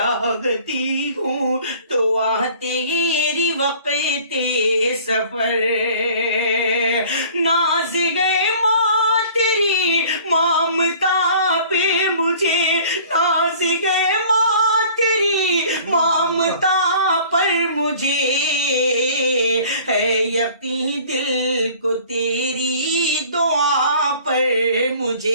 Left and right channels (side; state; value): both; inverted; correlation -0.49